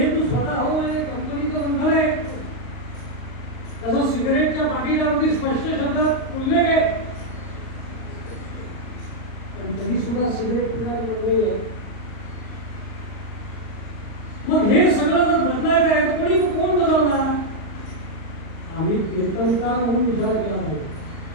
तू स्वतः हो आणि कंपनीचं बंधन आहे. तसं सिगरेटच्या पाकिटावरती स्पष्ट शब्दात उल्लेख आहे, पण तरी सुद्धा सिगरेट पिण्याला मंडळी आहे. मग हे सगळं जर बदलायचं आहे तर कोण बदलणार? आम्ही कीर्तनकार म्हणून विचार केला पाहिजे.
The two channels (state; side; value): late; right; 38 ms